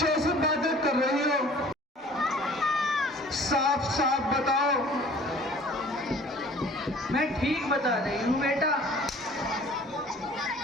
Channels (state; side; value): normal; both; correlation 0.49